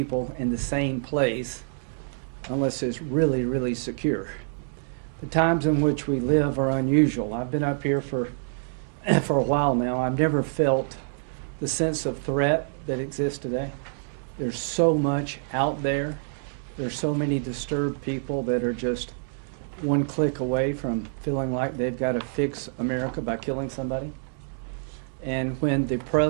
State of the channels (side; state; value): left; silent; digital silence